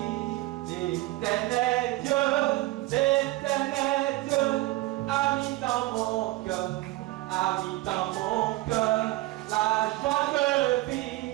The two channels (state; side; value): quieter; left; 18.7 dB